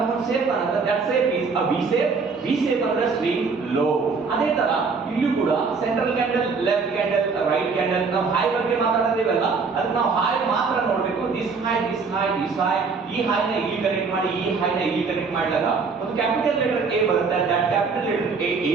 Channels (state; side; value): quieter; left; 4.8 dB